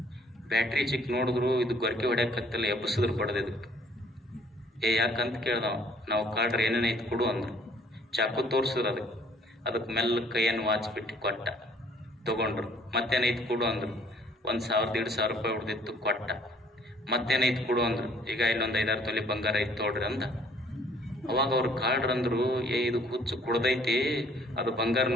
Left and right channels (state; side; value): normal; both; correlation 0.58